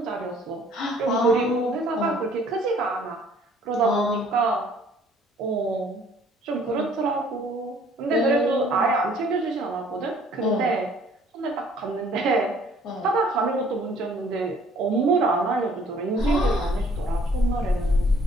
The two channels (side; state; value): both; normal; correlation 0.57